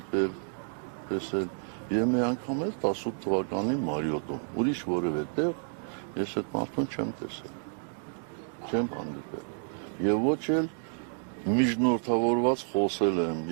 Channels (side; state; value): left; silent; digital silence